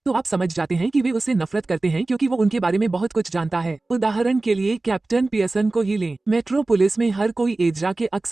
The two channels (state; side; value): quieter; left; 3.1 dB